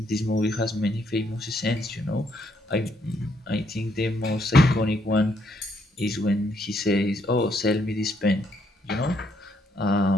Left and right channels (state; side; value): normal; both; correlation 0.73